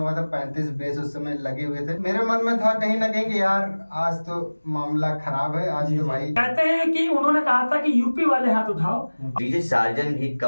था 35 बेस उस समय लगे हुए थे, मेरे मन में था कहीं ना कहीं कि यार आज तो मामला खराब है। आज तो भाई कहते हैं कि उन्होंने कहा था कि यूपी वाले हाथ उठाओ। डीजे सार्जन भी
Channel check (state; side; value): inverted; both; correlation -1.00